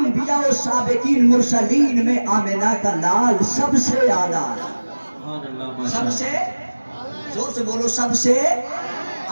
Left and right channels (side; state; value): both; inverted; correlation -1.00